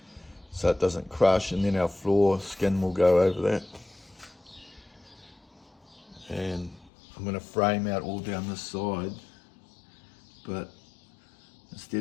so it doesn't crush, and then our floor skin will go over that. And I'm going to frame out all down this side, but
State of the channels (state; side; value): drops out; right; at 6.9 s